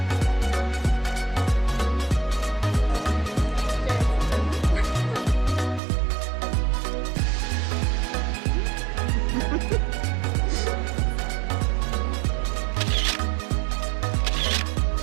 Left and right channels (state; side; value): drops out; left; at 5.8 s